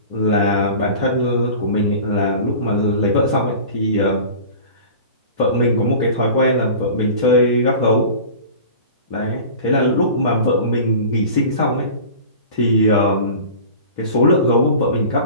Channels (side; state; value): both; inverted; correlation -0.38